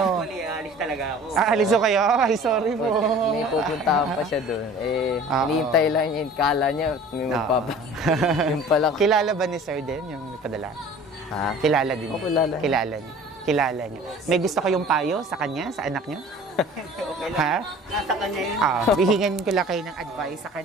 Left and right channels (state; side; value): normal; both; correlation 0.45